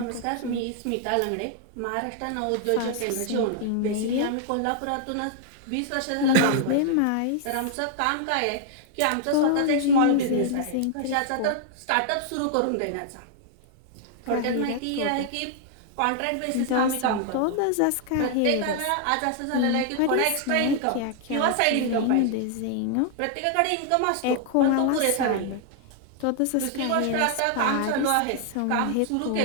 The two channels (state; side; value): different; both; correlation 0.00